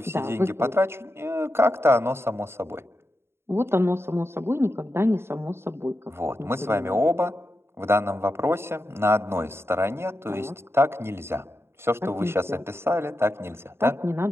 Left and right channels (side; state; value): left; late; 0.12 ms